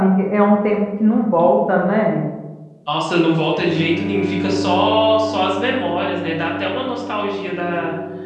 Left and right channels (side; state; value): both; identical; correlation 1.00